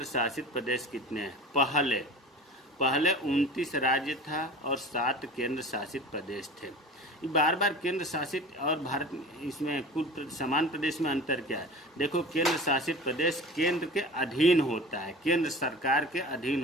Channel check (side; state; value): both; normal; correlation 0.37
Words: शासित प्रदेश कितने हैं। पहले 29 राज्य था और 7 केंद्र शासित प्रदेश थे। बार बार केंद्र शासित और भारत इसमें कुल समान प्रदेश में अंतर क्या है? देखो, केंद्र शासित प्रदेश केंद्र के अधीन होता है, केंद्र सरकार के अधीन